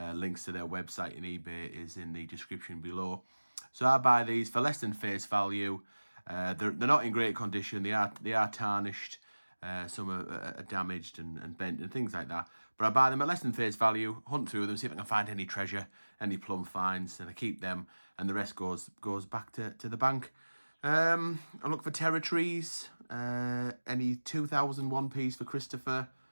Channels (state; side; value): inverted; both; correlation -1.00